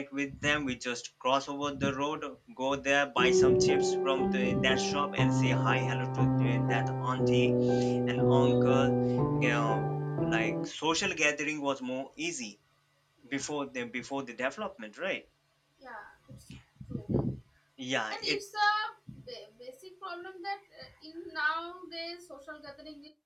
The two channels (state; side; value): identical; both; correlation 1.00